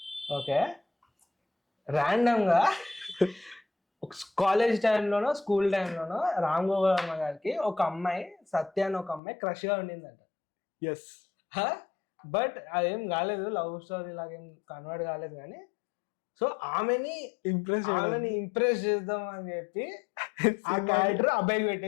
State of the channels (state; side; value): drops out; right; at 9.2 s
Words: ఓకే, ర్యాండమ్ గా కాలేజ్ టైంలోనో స్కూల్ టైంలోనో రామ్ గోపాల్ వర్మ గారికి ఒక అమ్మాయి సత్య అని ఒక అమ్మాయి క్రష్ గా ఉండిందంట. బట్ అదేం కాలేదు, లవ్ స్టోరీ లాగేం కన్వర్ట్ కాలేదు. కానీ సో ఆమెని ఇంప్రెస్ చేద్దాం అని చెప్పి ఆ క్యారెక్టర్ అబ్బాయికి